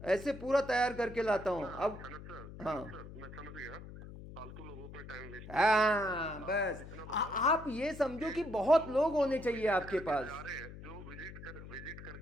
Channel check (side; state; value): left; noise; hum, 13 dB below the sound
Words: ऐसे पूरा तैयार करके लाता हूँ। अब हाँ मैं समझ गया, फालतू लोगों पे टाइम वेस्ट। हाँ बस आप ये समझो कि बहुत लोग होने चाहिए आपके पास। जा रहे हैं जो विजिट